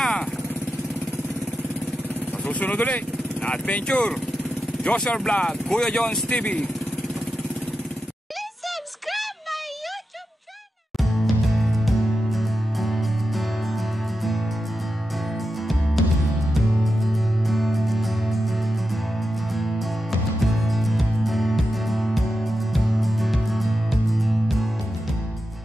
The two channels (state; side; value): normal; both; correlation 0.90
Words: Sa susunod ulit na adventure, Joshua Vlog, Kuya Jones TV. Please subscribe my YouTube channel.